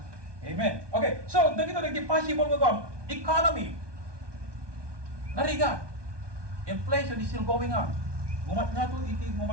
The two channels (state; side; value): late; left; 1.2 ms